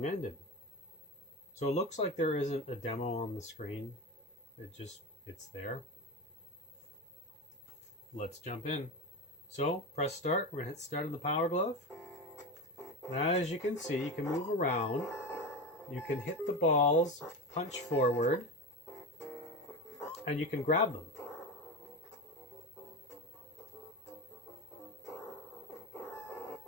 ended. So it looks like there isn't a demo on the screen. It's there. Let's jump in. So press start. We're gonna hit start on the Power Glove. And as you can see, you can move around. You can hit the balls, punch forward, and you can grab them.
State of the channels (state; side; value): normal; both; correlation 0.22